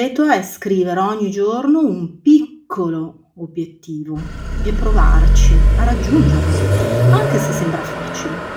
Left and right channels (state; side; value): identical; both; correlation 1.00